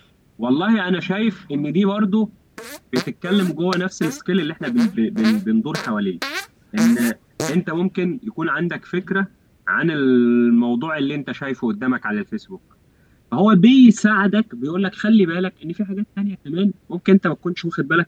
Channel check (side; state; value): both; identical; correlation 1.00